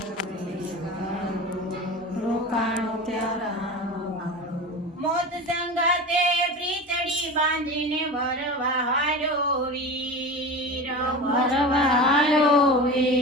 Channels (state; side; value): normal; both; correlation 0.30